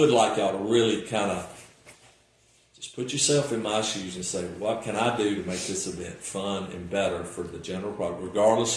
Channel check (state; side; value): identical; both; correlation 1.00